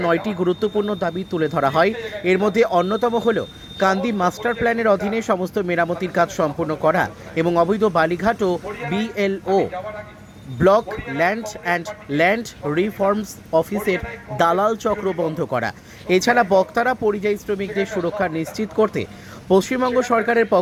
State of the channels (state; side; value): identical; both; correlation 1.00